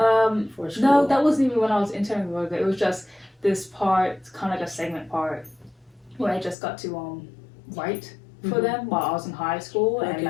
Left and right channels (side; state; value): right; drops out; at 6.6 s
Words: for school? No, that wasn't even when I was interning with it. It was just this part, kind of like a segment part, where I just got to write for them while I was in high school, and